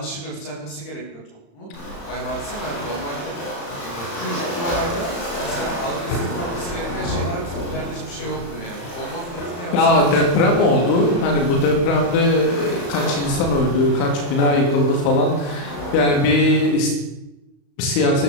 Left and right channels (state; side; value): late; right; 35 ms